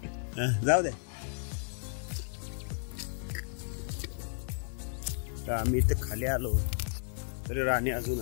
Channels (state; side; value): silent; right; digital silence